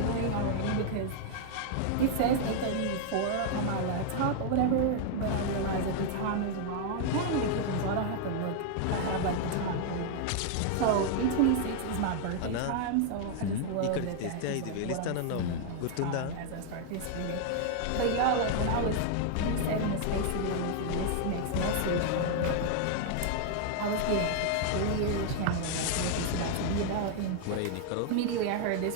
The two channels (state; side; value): different; both; correlation 0.00